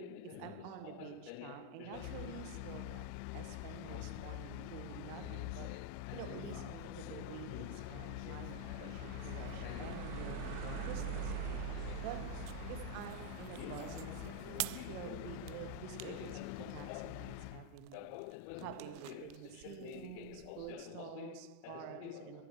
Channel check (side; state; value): both; different; correlation 0.00